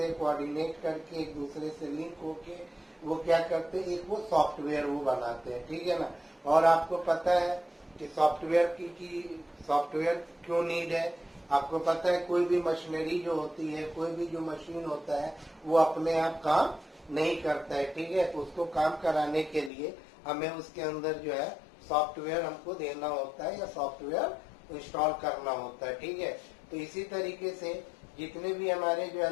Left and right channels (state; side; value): drops out; right; at 19.7 s